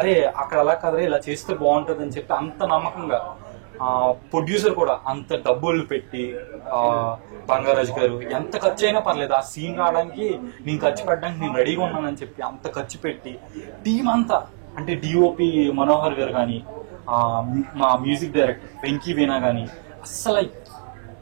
అక్కడ అలా కదరే ఇలా చేస్తే బాగుంటుంది అని చెప్పి అంత నమ్మకంగా, ప్రొడ్యూసర్ కూడా అంత డబ్బులు పెట్టి బంగారాజు గారు ఎంత ఖర్చు అయినా పర్లేదు ఆ సీన్ రావడానికి నేను ఖర్చు పెట్టడానికి నేను రెడీగా ఉన్నానని చెప్పి అంత ఖర్చు పెట్టి టీం అంతా, అంటే డిఓపి మనోహర్ గారు కానీ, మా మ్యూజిక్ డైరెక్టర్ వెంకీ వీణా కానీ, అస్సలు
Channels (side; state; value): left; silent; 61 dB below the other